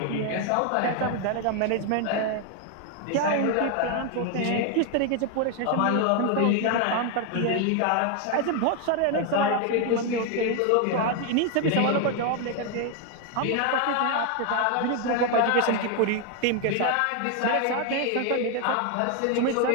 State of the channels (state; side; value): different; both; correlation 0.01